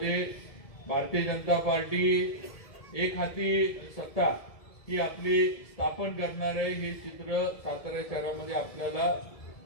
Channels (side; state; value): right; late; 1.7 ms